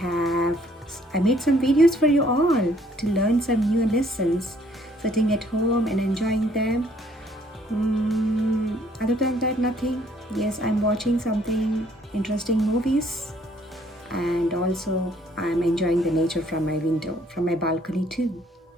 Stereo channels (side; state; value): both; normal; correlation 0.63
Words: made some videos for you all to learn some new lessons, sitting at home and enjoying them. Other than that, nothing. Yes, I'm watching something interesting movies and also I'm enjoying the nature from my window, from my balcony too.